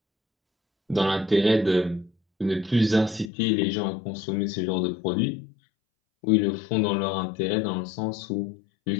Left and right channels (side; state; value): right; drops out; at 3.3 s